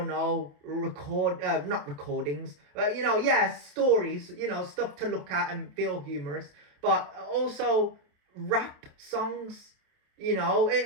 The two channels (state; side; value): late; left; 27 ms